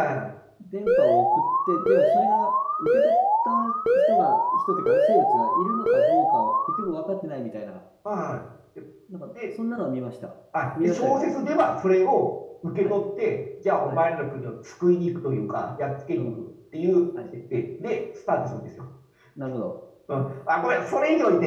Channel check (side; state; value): both; identical; correlation 1.00